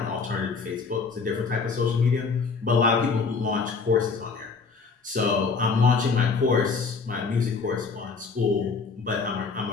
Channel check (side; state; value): right; quieter; 4.8 dB